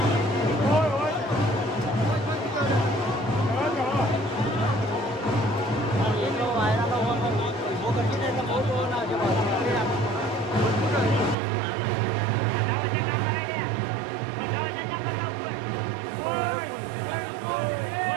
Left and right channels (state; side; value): drops out; left; at 11.4 s